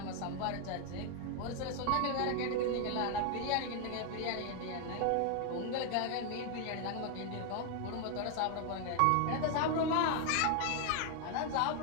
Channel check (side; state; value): both; different; correlation 0.01